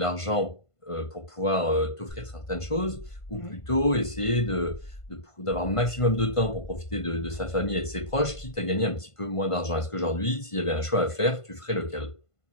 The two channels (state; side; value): late; right; 1.5 ms